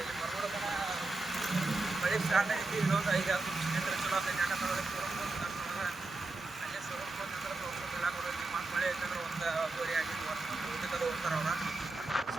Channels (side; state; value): left; quieter; 3.2 dB